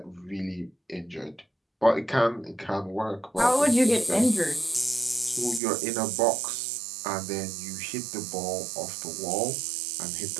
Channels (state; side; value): drops out; left; at 5.6 s